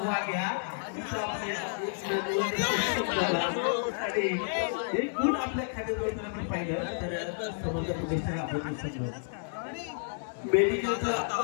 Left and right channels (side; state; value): right; silent; digital silence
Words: एक गुण आपल्या खात्यात आपण पाहिलं तर समजा मेडिकल